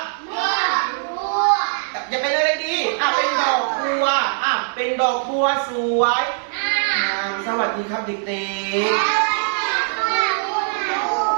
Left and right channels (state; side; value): silent; left; digital silence